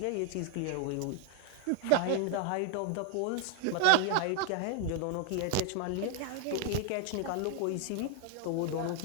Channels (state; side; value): different; both; correlation 0.00